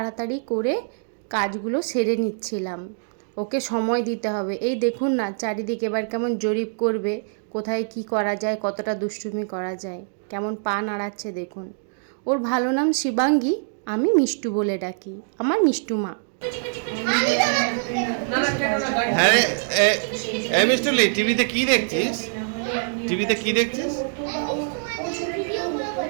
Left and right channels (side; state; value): left; silent; digital silence